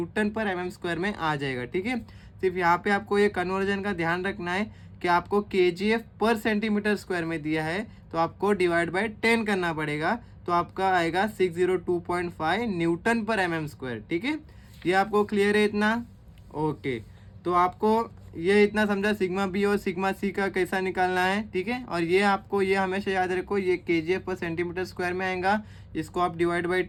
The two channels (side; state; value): both; identical; correlation 1.00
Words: पर mm स्क्वायर में आ जाएगा, ठीक है। सिर्फ यहाँ पे आपको ये कन्वर्जन का ध्यान रखना है कि आपको kgf पर सेंटीमीटर स्क्वायर में दिया है, तो आपको डिवाइड बाय 10 करना पड़ेगा, तो आपका आएगा 602.5 न्यूटन पर mm स्क्वायर, ठीक है। ये आपको क्लियर है इतना, ओके। तो आपको ये इतना समझा सिग्मा बी और सिग्मा सी का कैसा निकालना है, ठीक है। और ये आपको ये हमेशा याद रखो, ये kgf पर सेंटीमीटर स्क्वायर में आएगा, इसको आप डिवाइड बाई